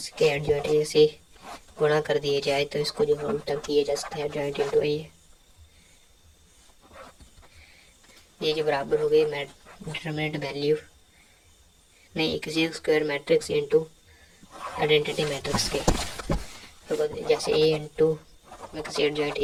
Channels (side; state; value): both; identical; correlation 1.00